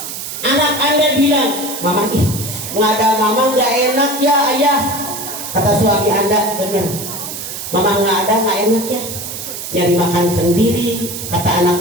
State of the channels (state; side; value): noise; right; hiss, 7 dB below the sound